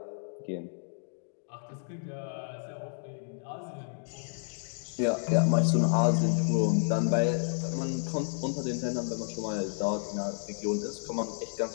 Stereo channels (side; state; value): right; silent; digital silence